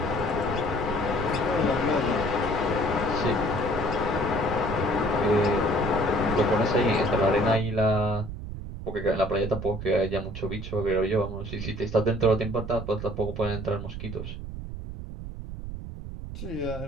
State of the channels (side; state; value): right; noise; rumble, 8 dB below the sound